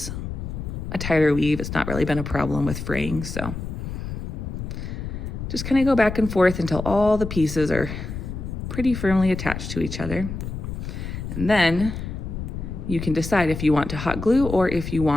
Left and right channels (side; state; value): left; noise; rumble, 6 dB below the sound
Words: a tighter weave. It's not really been a problem with fraying, so just kind of go back and forth until all the pieces are pretty firmly attached to each other. And then you can decide if you want to hot glue or if you